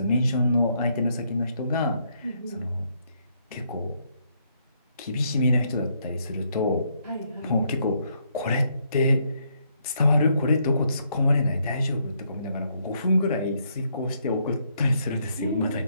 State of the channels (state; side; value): inverted; both; correlation -0.73